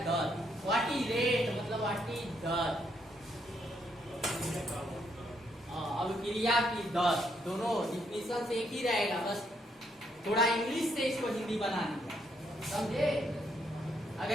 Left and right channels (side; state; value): both; normal; correlation 0.74